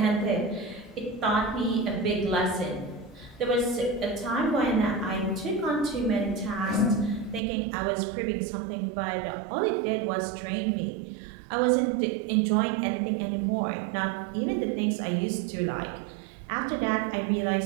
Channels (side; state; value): left; drops out; at 7.4 s